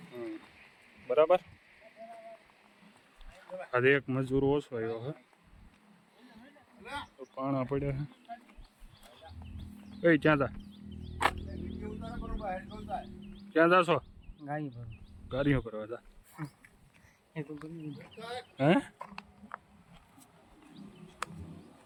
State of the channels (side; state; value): both; identical; correlation 1.00